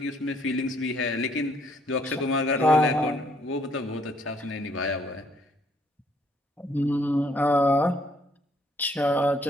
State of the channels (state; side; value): normal; both; correlation 0.66